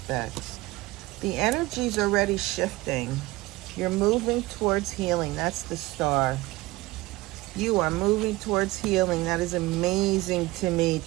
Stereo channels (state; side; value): quieter; left; 20.0 dB